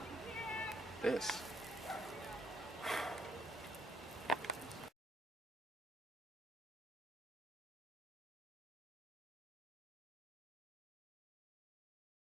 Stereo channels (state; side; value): normal; both; correlation 0.70